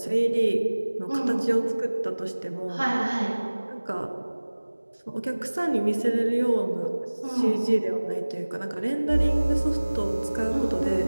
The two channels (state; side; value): inverted; both; correlation -1.00